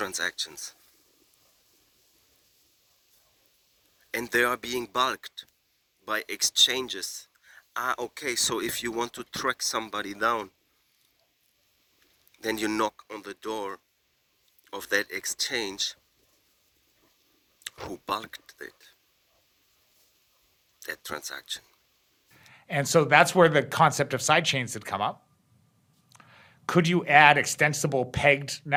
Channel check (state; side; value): identical; both; correlation 1.00